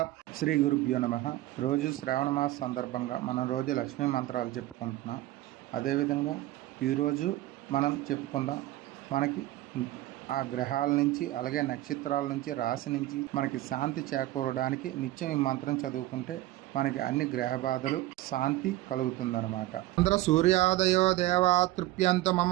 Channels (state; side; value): quieter; left; 16.3 dB